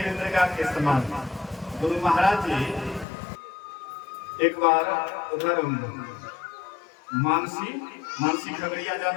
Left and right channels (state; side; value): drops out; right; at 3.1 s